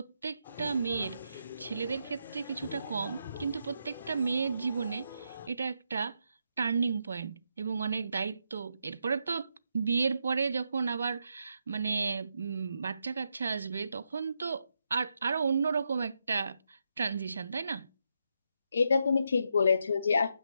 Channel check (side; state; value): both; inverted; correlation -0.82